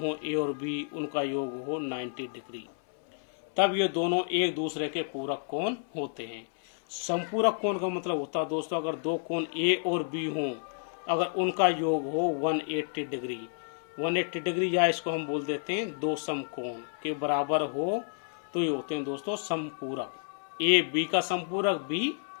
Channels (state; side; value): silent; right; 58 dB below the other